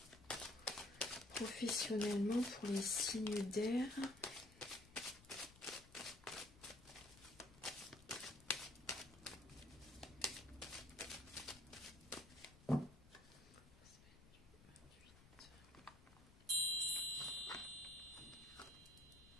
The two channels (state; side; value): noise; left; rumble, 22 dB below the sound